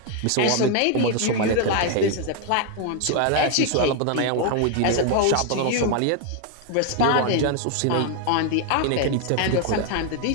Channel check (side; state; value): both; different; correlation 0.01